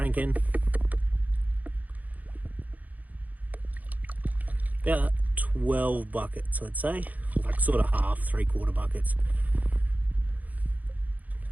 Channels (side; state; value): left; late; 0.078 ms